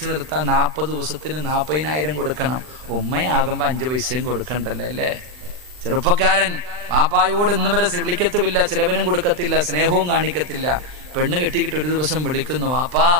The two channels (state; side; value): late; left; 39 ms